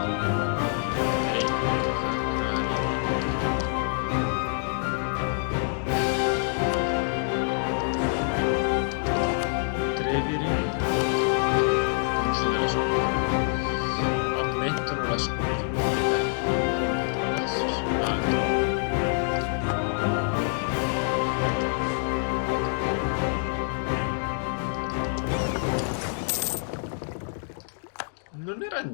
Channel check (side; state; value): right; silent; digital silence